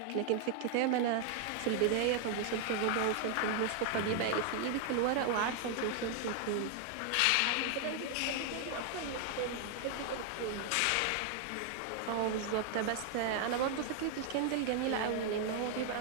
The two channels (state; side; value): different; both; correlation 0.00